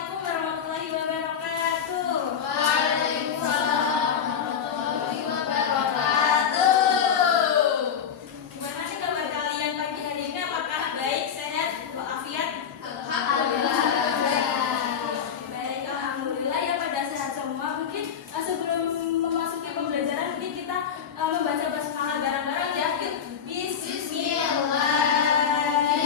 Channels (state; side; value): quieter; right; 7.7 dB